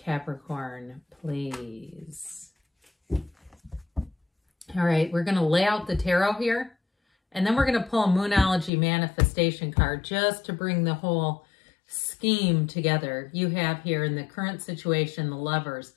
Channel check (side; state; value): right; drops out; at 8.7 s